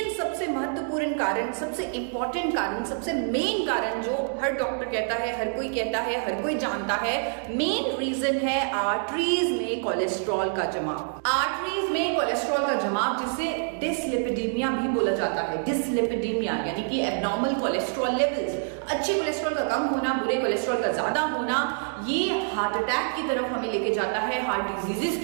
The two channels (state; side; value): silent; left; 60 dB below the other